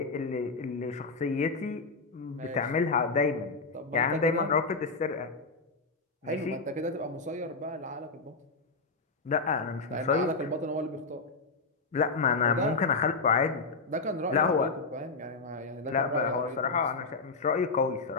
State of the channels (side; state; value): right; quieter; 4.0 dB